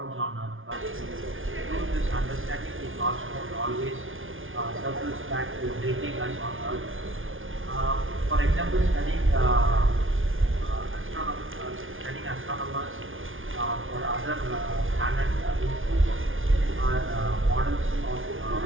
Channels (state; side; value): late; left; 0.58 ms